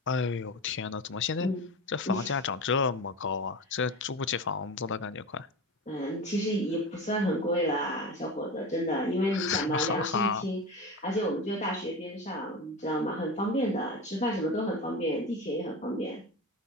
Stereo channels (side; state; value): both; normal; correlation 0.26